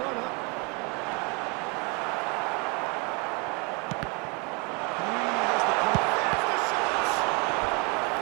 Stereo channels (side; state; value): left; quieter; 31.5 dB